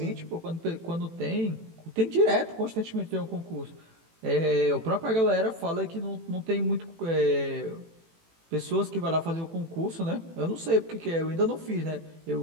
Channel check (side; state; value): left; late; 18 ms